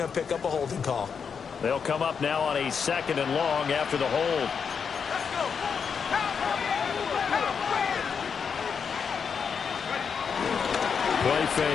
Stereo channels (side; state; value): right; quieter; 6.4 dB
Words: to pick up a holding call. They'll come up now on a 2nd and long after the hold. Play